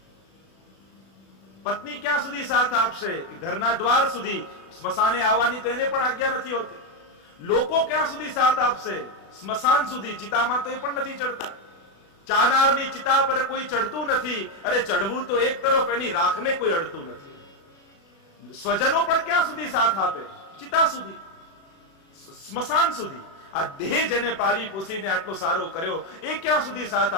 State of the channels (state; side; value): late; right; 36 ms